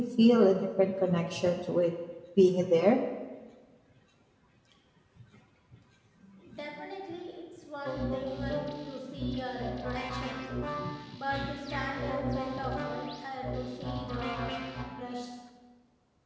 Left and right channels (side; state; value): both; identical; correlation 1.00